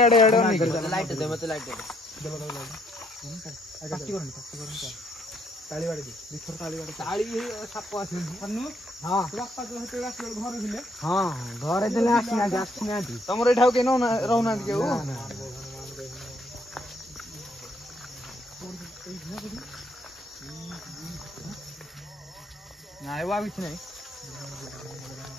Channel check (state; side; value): normal; both; correlation 0.69